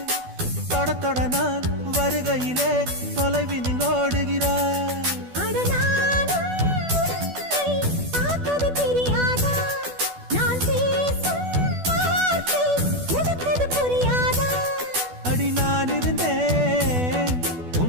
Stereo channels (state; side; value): late; left; 12 ms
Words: தொட தொட நான் வருகையிலே தொலைவினில் ஓடுகிறாய். அடி நான் இருந்தேன்